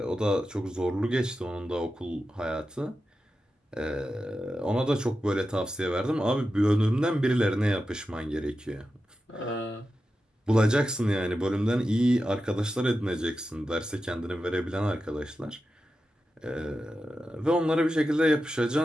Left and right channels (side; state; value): both; normal; correlation 0.91